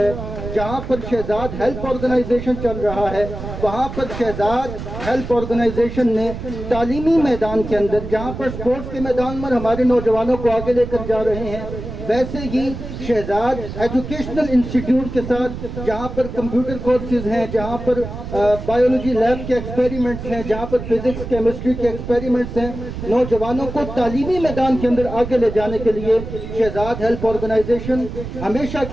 جہاں پر شہزاد ہیلپ آرگنائزیشن چل رہا ہے, وہاں پر شہزاد ہیلپ آرگنائزیشن نے تعلیمی میدان کے اندر جہاں پر سپورٹس کے میدان میں ہمارے نوجوانوں کو آگے لے کر جا رہے ہیں, ویسے ہی شہزاد ایجوکیشنل انسٹیٹیوٹ کے ساتھ جہاں پر کمپیوٹر کورسز ہیں, جہاں پر بایولوجی لیب کے ایکسپیریمنٹس ہیں, جہاں پر فزکس کیمسٹری کے ایکسپیریمنٹس ہیں, نوجوانوں کو تعلیمی میدان کے اندر آگے لے جانے کے لیے شہزاد ہیلپ آرگنائزیشن ہمیشہ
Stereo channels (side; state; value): right; noise; rumble, 9 dB below the sound